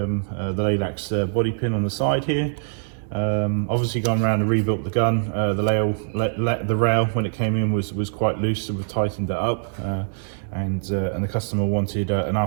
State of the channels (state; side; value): silent; left; digital silence